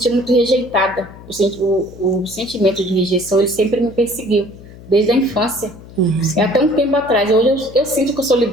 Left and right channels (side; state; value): left; noise; hum, 18 dB below the sound